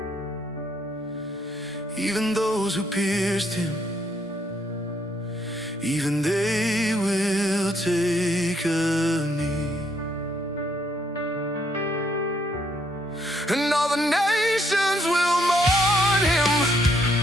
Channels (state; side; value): normal; both; correlation 0.71